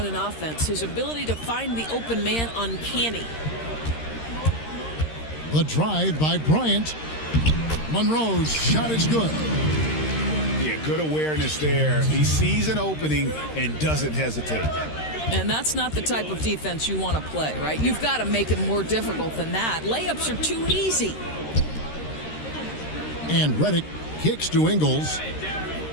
an offense. His ability to find the open man, uncanny. The drive by Bryant. Monroe's shot is good. Yeah, good awareness there. He sees an opening and doesn't hesitate. And that's not the type of defense you want to play, right? You've got to make it more difficult than that. Layups are too easy. And Redick kicks to Ingles.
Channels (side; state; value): right; late; 13 ms